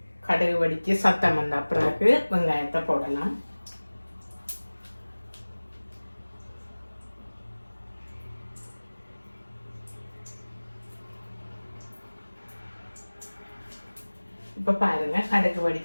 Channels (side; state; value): both; inverted; correlation -1.00